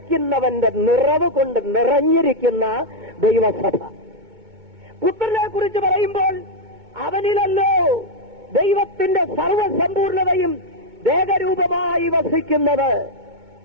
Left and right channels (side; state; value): left; late; 2.2 ms